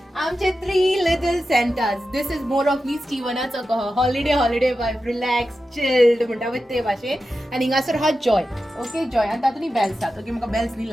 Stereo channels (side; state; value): both; normal; correlation 0.92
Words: आमचे 3 little Santas. This is more of me स्टीवनाचो कहो हॉलिडे वायब, रिलॅक्स चिल्ड म्हणटा पळय ते भाशेन. आनी हिंगासर हा जॉय. ओके, जॉय आनी तातूंत बेल्स आसात. ओके, म्हाका बेल्स न्ही